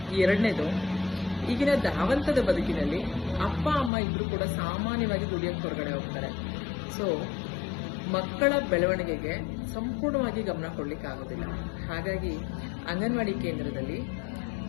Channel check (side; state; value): right; drops out; at 3.9 s